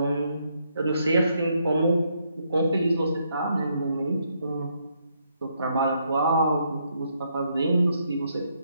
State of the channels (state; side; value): inverted; both; correlation -0.75